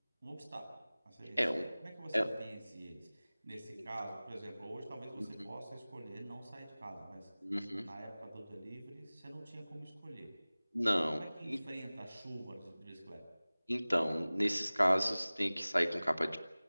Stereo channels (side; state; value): both; inverted; correlation -0.99